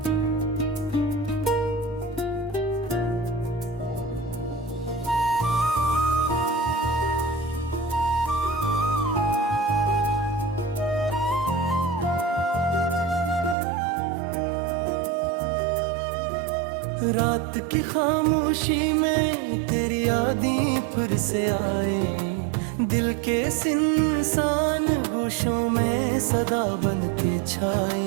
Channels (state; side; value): drops out; left; at 13.6 s